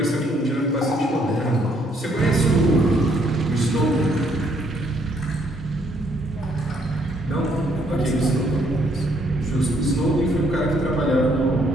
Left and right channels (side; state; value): both; normal; correlation 0.69